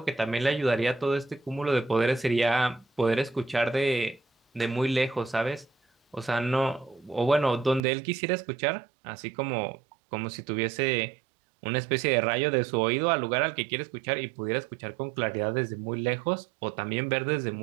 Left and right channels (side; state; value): left; drops out; at 7.8 s